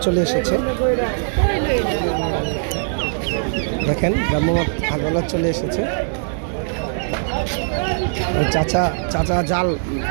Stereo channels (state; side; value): silent; left; digital silence